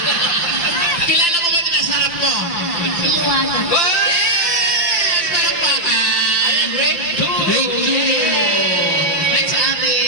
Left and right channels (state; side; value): late; right; 5.9 ms